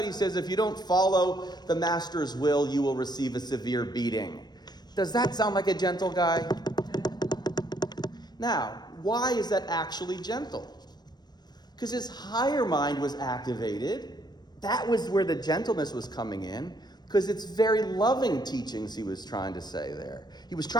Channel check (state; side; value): late; right; 0.20 ms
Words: he says if you don't follow the master's will, you will receive a severe beating. Does that sound like a gentle guy? Now, why is that actually gentle? Because his higher mind was activated. That was where the gentleness was coming in. Because it's very loving teachings he was trying to say there. He was